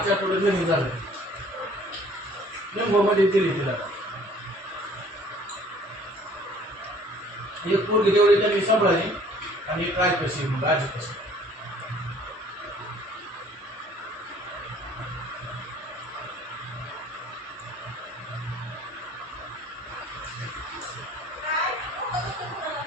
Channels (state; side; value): normal; both; correlation 0.54